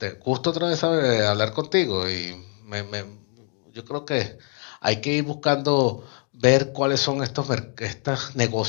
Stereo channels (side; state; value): right; quieter; 38.9 dB